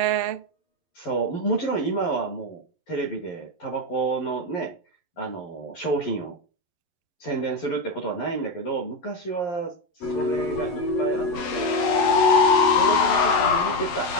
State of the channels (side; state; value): right; late; 11 ms